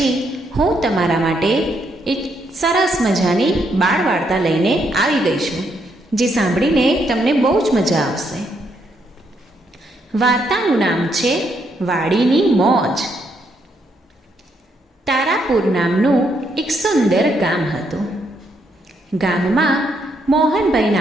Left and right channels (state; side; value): normal; both; correlation 0.75